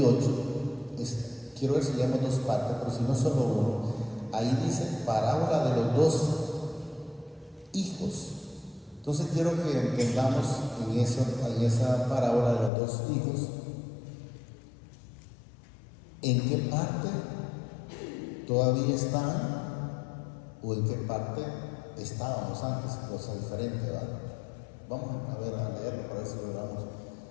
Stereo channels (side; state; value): right; drops out; at 12.7 s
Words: Quiero ver si leemos dos partes, pero si no solo uno. Ahí dice parábola de los dos hijos. Entonces quiero que entendamos en esa parábola de los dos hijos, en qué parte todavía están o en qué parte estábamos antes, cosa diferente, ¿verdad? Vamos a leerlo para ver si logramos